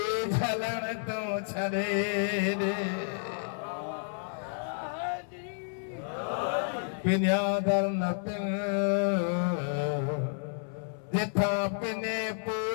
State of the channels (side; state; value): right; silent; 57 dB below the other